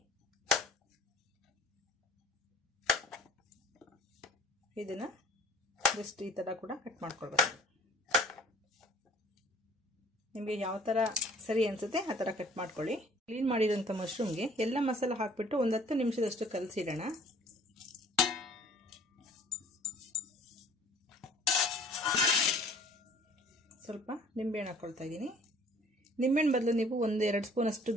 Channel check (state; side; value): normal; both; correlation 0.52